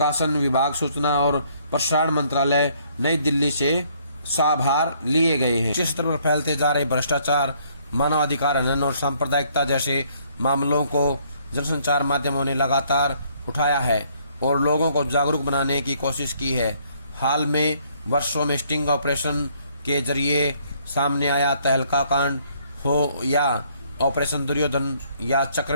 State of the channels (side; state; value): both; inverted; correlation -0.65